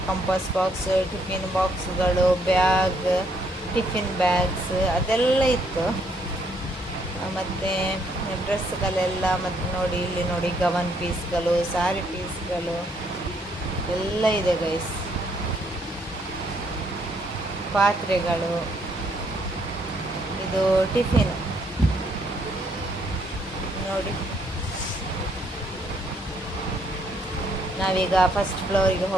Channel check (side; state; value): both; normal; correlation 0.70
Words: ಕಂಪಾಸ್ ಬಾಕ್ಸ್, ಟಿಫಿನ್ ಬಾಕ್ಸ್ಗಳು, ಬ್ಯಾಗ್, ಟಿಫಿನ್ ಬ್ಯಾಗ್ಸ್ ಅದೆಲ್ಲ ಇತ್ತು. ಮತ್ತು ಡ್ರೆಸ್ಗಳೆಲ್ಲ, ಮತ್ತು ನೋಡಿ ಇಲ್ಲಿ ನೋಡಿ ಗವನ್ ಪೀಸ್ಗಳು, ಸಾರಿ ಪೀಸ್ಗಳು ಎಲ್ಲ ಇದೆ ಗೈಸ್. ಪಾತ್ರೆಗಳು, ಇದು ಟಿಫಿನ್ ನೋಡಿ. ನಾವೀಗ ಫಸ್ಟ್ ಫ್ಲೋರಿಗೆ